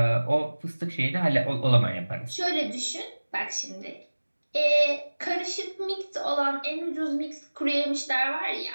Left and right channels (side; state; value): both; inverted; correlation -1.00